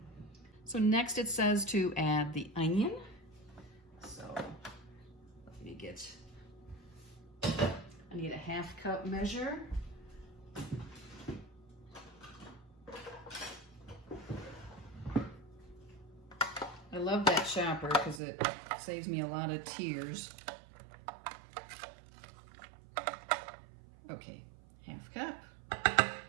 So next it says to add the onion. So let me get, I need a 1/2 cup measure. I love that chopper because it saves me a lot of tears. Okay, 1/2 cup.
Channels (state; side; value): drops out; left; at 18.2 s